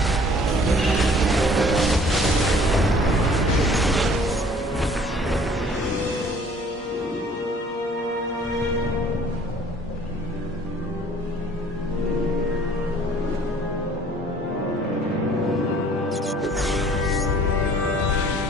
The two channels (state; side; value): normal; both; correlation 0.53